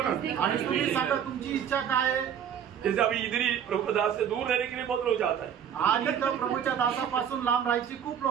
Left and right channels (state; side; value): quieter; left; 8.7 dB